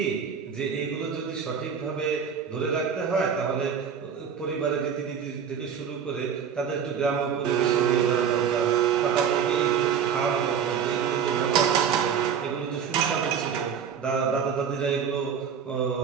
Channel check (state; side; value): quieter; left; 7.4 dB